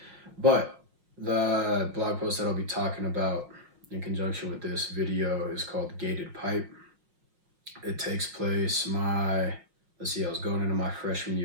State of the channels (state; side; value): late; left; 5.6 ms